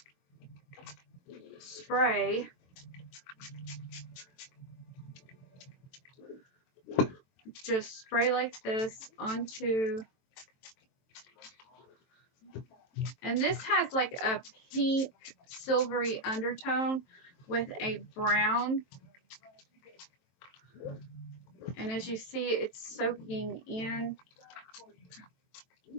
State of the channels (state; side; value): late; right; 23 ms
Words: spray like this onto, and this has like a pink silvery undertone with a brown, and as you see, it's soaking in